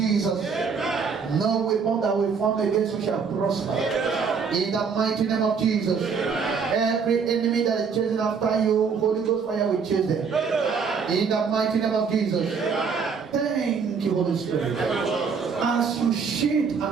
No weapon that will form against you shall prosper. In the mighty name of Jesus. Every enemy that is chasing after you, Holy Ghost fire will chase them. In the mighty name of Jesus. Thank you, Holy Spirit. As you shield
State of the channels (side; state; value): left; quieter; 5.8 dB